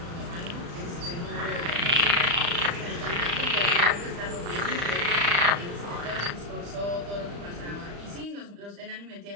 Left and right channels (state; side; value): late; left; 35 ms